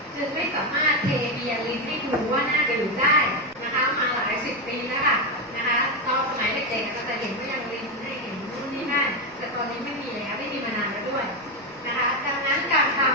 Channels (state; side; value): noise; right; rumble, 28 dB below the sound